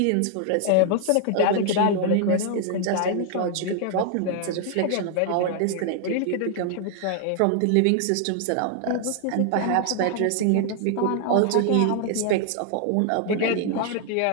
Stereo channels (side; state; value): both; different; correlation 0.00